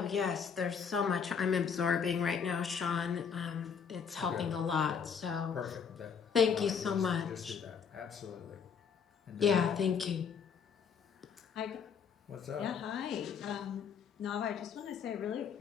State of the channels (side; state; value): right; quieter; 6.8 dB